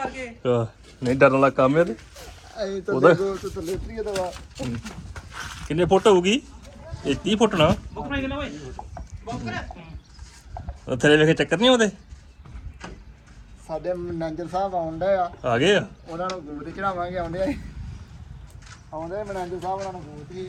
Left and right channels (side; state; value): both; identical; correlation 1.00